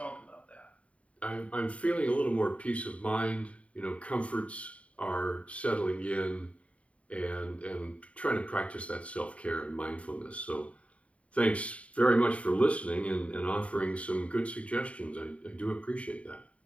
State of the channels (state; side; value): late; right; 0.065 ms